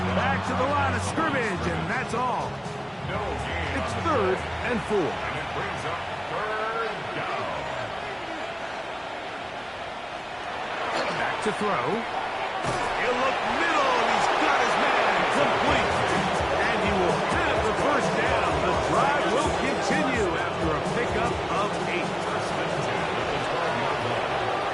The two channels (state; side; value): identical; both; correlation 1.00